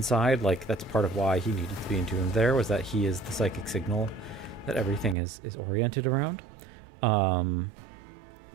Like, that's part of why he needed to be entombed there, was that he is the psychic signal that everything is oriented around.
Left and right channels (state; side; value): drops out; left; at 5.2 s